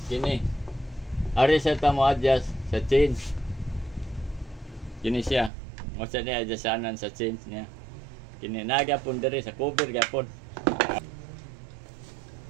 Kini. Ari sa ta mo adjust sa chains. Kini siya. Masa niya adjustanan sa chains niya. Kini nagapon diri sa cover gapon.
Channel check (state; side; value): drops out; left; at 5.5 s